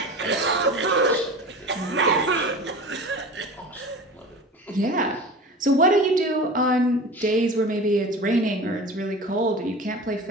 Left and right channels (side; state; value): both; normal; correlation 0.34